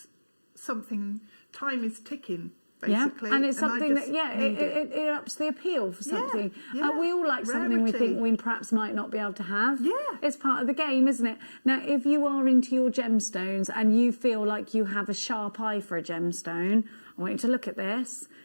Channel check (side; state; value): both; inverted; correlation -1.00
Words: something. Time is ticking. Basically. Yeah, and it's something that, it ups the appeal for something. Yeah, We all like something we rarity. think we perhaps might not be able to have. Yeah. It's part of the game, isn't it? Now, if you are into your gemstones and you feel like you have a sharp eye for a gemstone, I want you to look at this.